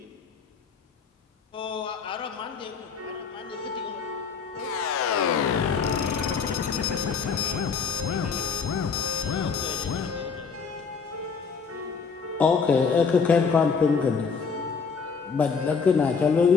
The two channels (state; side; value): quieter; right; 5.6 dB